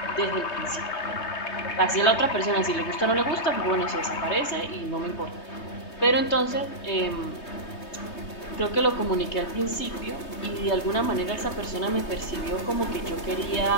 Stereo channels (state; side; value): late; right; 3.2 ms